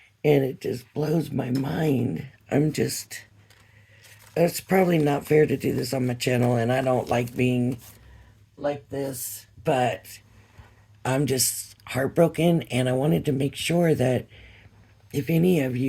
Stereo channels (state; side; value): identical; both; correlation 1.00